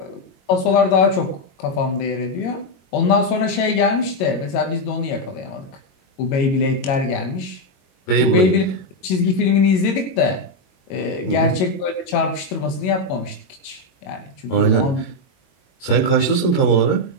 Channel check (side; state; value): right; late; 22 ms